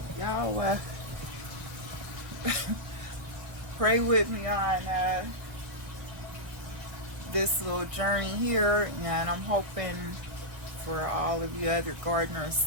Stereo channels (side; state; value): left; late; 1.3 ms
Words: Y'all pray with me on this little journey here, and I'm hoping for all of you other gardeners